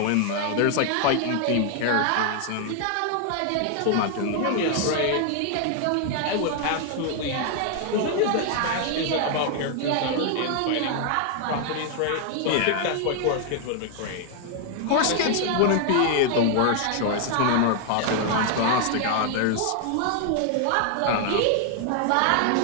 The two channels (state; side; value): different; both; correlation 0.00